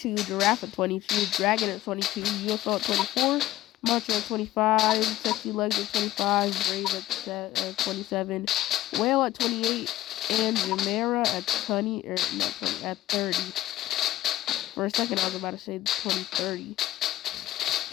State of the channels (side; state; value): right; quieter; 15.0 dB